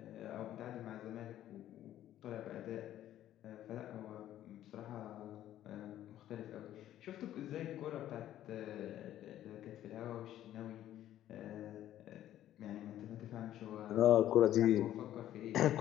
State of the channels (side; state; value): right; quieter; 12.4 dB